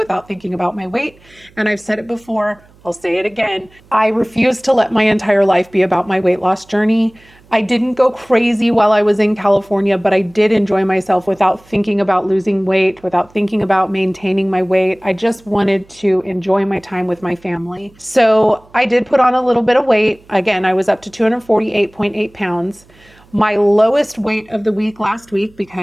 thinking about my weight. And I've said it before, I'll say it again. I refuse to let my entire life be about my weight loss journey. I didn't go crazy while I was in California, but I did enjoy myself without thinking about losing weight, without thinking about maintaining my weight. I just wanted to enjoy my time with my family. So I did put on a little bit of weight. Again, I was up to 248.8 pounds. My lowest weight of the week last week,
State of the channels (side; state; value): right; noise; hum, 28 dB below the sound